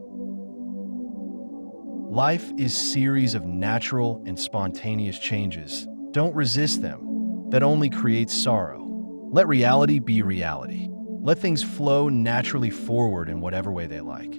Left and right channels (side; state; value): both; inverted; correlation -1.00